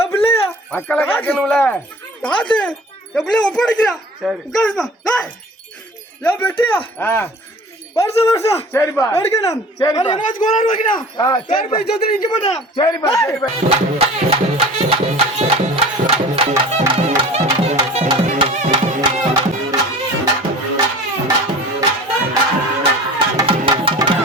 என் பிள்ளையா மக்களை காக்கணும்ல. காத்து என் பிள்ளைய ஒப்படைக்கிறா. சரி உட்காருமா. என் பெட்டியா வருஷம் வருஷம் சரிப்பா எடுக்கணும். சரி என்னாச்சு கோளாறு வைக்கணும். சரிப்பா சொத்து நிக்க மாட்டேன். சரிப்பா சரிப்பா.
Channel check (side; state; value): both; normal; correlation 0.42